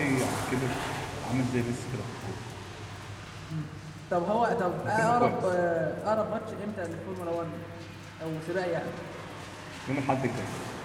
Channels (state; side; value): identical; both; correlation 1.00